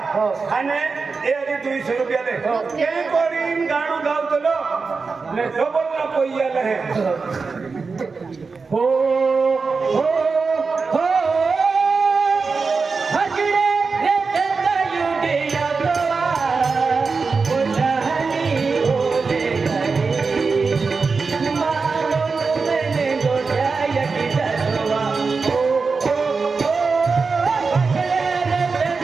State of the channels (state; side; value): quieter; left; 4.6 dB